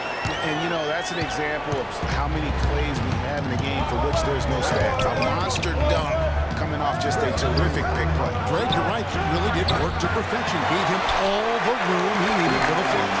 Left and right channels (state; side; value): identical; both; correlation 1.00